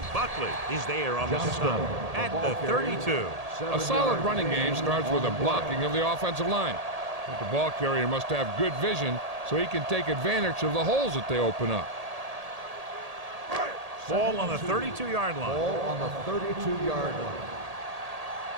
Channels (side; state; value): left; late; 1.8 ms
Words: Buckley is there on the stop at the 32. A solid running game starts with a blocking of the offensive line. But the ball carrier must have good vision so he can take advantage of the holes that they open up. Ball on the 32-yard line. Ball on the 32-yard line.